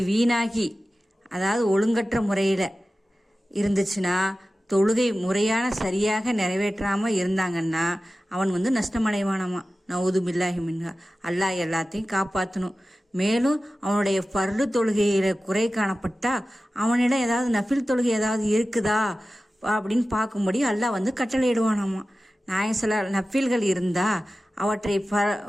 வீணாகி, அதாவது ஒழுங்கற்ற முறையில் இருந்துச்சுன்னா, தொழுகை முறையான சரியாக நிறைவேற்றாமல் இருந்தாங்கன்னா அவன் நஷ்டமடைவானாமா. நவுது பில்லாஹி மின்ஹா. அல்லாஹ் எல்லாத்தையும் காப்பாற்றணும். மேலும் அவனுடைய ஃபர்து தொழுகையில் குறை காணப்பட்டா அவனிடம் ஏதாவது நஃபில் தொழுகை ஏதாவது இருக்குதா அப்படின்னு பார்க்கும்படி அல்லாஹ் கட்டளையிடுவானாமா. நஃபில்கள் இருந்தால்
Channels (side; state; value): both; normal; correlation 0.95